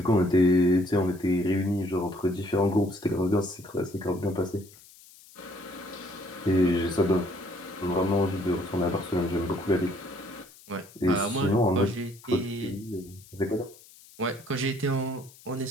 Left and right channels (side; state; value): left; noise; hiss, 23 dB below the sound